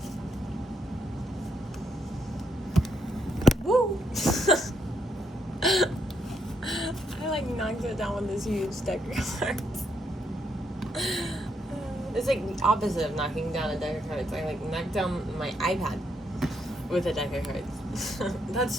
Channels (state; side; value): normal; both; correlation 0.77